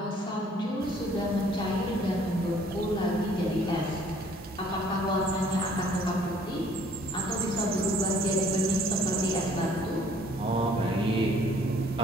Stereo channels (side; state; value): both; normal; correlation 0.58